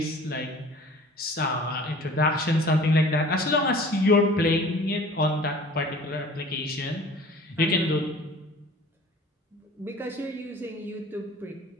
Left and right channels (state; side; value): normal; both; correlation 0.46